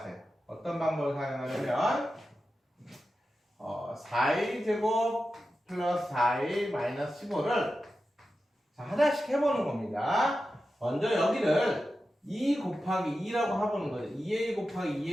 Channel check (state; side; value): normal; both; correlation 0.92